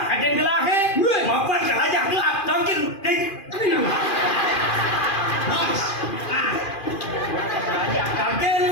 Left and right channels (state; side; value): late; right; 2.4 ms